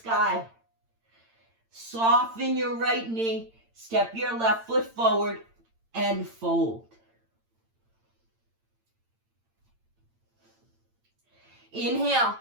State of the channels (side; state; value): left; late; 8.8 ms